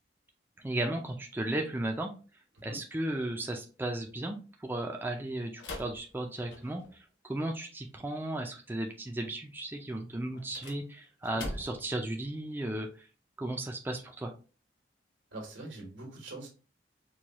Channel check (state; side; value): normal; both; correlation 0.69